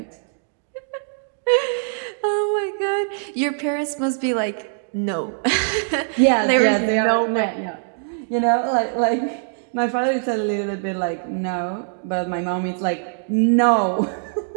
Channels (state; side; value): silent; left; digital silence